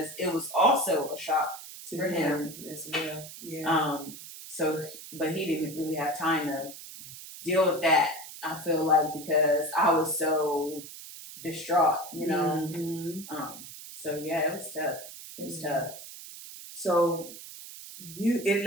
it was also a shock for him as well. Yeah. So, but he didn't really have time to deal with that. I feel like because I was so distraught, you know. So yeah, it was tough. It was tough. So it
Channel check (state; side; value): noise; right; hiss, 13 dB below the sound